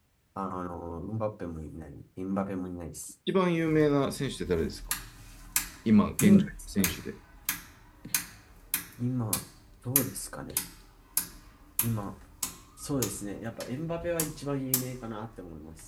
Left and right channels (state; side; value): identical; both; correlation 1.00